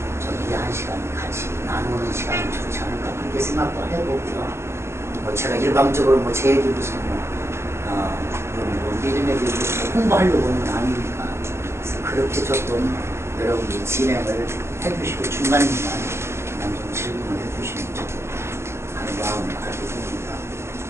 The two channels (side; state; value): left; late; 0.13 ms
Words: 저희들이 한 시간 같이 나누는 시간이 좋지 않을까 그렇게 생각도 해보고요. 뭐 제가 일방적으로 뭐 제 얘기 무슨 믿음에 대해서 홍보하려고 하는 건 아니니까 그래서 그렇게 조금 여러분이 진행을 해주시고 중간중간 그냥 좀 질문을 해주시면 좋겠다 하는 마음을 가지고 있습니다.